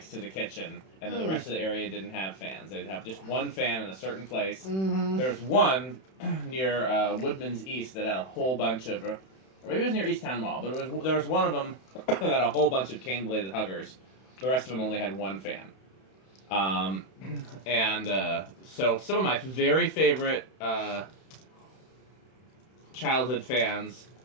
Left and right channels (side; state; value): right; late; 31 ms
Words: to the kitchen, and then the rest of the area didn't have fans. They'd have just one fan in a certain place. Mm-hmm. There's one near Woodman's East that had a whole bunch of, or maybe it was near Easttown Mall, but there was one of them that had a whole bunch of cane-bladed huggers. The rest of them only had one fan. So some of my very favorite childhood fans